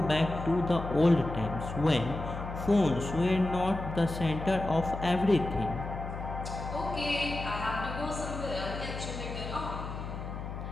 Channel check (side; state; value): left; noise; hum, 7 dB below the sound